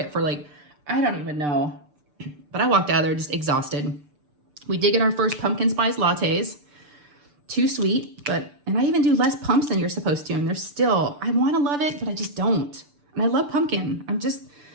for like, I don't even know. But I walked out of there just exhausted. We did get our first pumpkin spice lattes. Too sweet, and I even do less pumps than you're supposed to. And they're still, I want to love it, but I just don't. And I love pumpkin.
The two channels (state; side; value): late; left; 6.8 ms